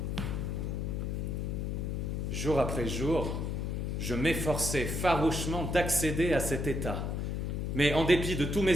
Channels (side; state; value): left; noise; hum, 1 dB below the sound